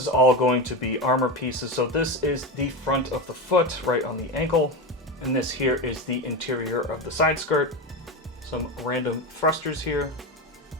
all going to be armor pieces. So this is the front of the foot right on the ankle, and this here is the interior of the side skirt. Some random thrusters here.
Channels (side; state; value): both; normal; correlation 0.18